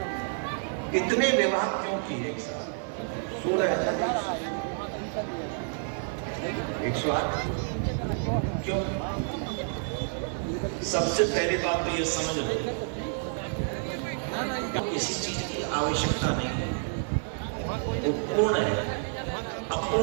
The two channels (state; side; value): silent; left; digital silence